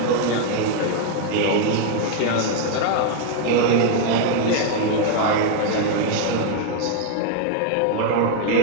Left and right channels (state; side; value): different; both; correlation 0.00